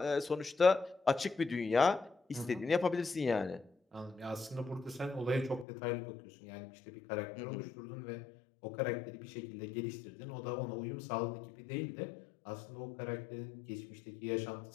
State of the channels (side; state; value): right; drops out; at 5.7 s